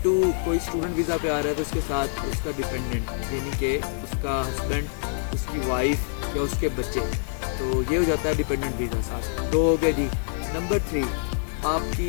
कोई स्टूडेंट वीज़ा पे आ रहा है तो उसके साथ उसका डिपेंडेंट यानी कि उसका हस्बैंड, उसकी वाइफ या उसके बच्चे, तो ये हो जाता है डिपेंडेंट वीज़ा साथ। 2 हो गए जी। नंबर 3,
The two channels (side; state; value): right; silent; 59 dB below the other